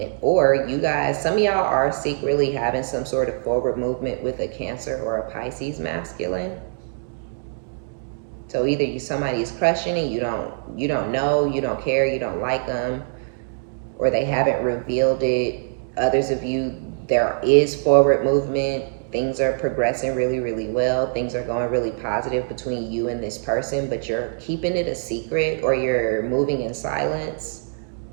Or you guys, some of y'all are secretly having some sort of forward movement with a Cancer or a Pisces masculine. So either somebody is crushing and you don't know, you don't care, you don't like them, or they haven't revealed it. Others of you, there is forward movement. Things are progressing really, really well. Things are going really positive between you and this person, but you're keeping it a secret, or you're moving in silence,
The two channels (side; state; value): left; silent; digital silence